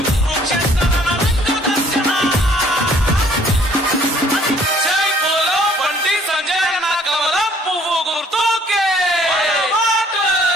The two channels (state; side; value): normal; both; correlation 0.59